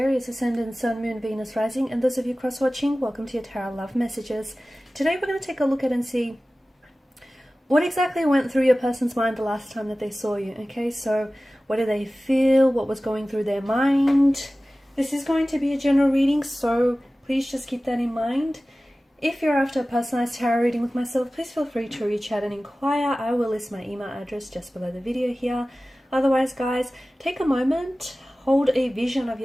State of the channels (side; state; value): both; normal; correlation 0.97